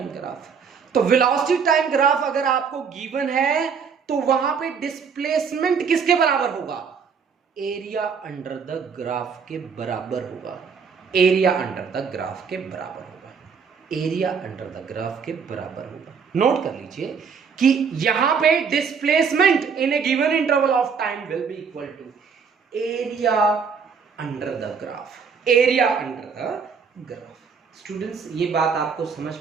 ग्राफ, तो वेलोसिटी टाइम ग्राफ अगर आपको गिवन है तो वहां पे डिस्प्लेसमेंट किसके बराबर होगा, एरिया अंडर द ग्राफ के बराबर होगा, एरिया अंडर द ग्राफ के बराबर होगा, एरिया अंडर द ग्राफ के बराबर होगा। नोट कर लीजिए कि यहां पे displacement in a given interval of time will be equal to area under the graph, area under the graph. Students ये बात आपको समझ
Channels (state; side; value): quieter; left; 6.1 dB